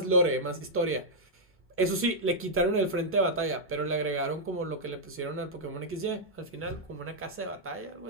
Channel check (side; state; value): both; normal; correlation -0.06